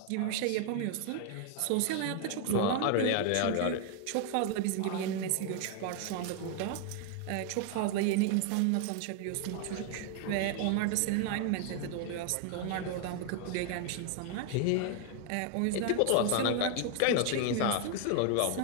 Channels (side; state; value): both; different; correlation 0.00